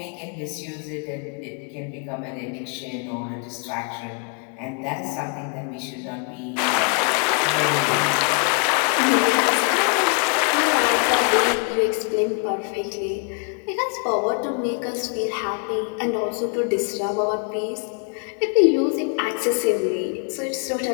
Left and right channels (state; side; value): quieter; right; 39.5 dB